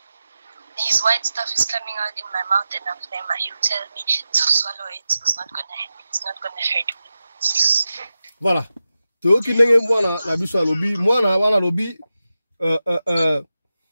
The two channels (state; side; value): inverted; both; correlation -0.92